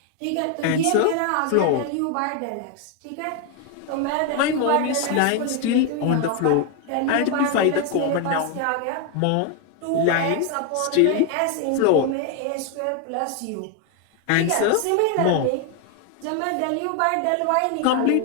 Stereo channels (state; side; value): different; both; correlation 0.01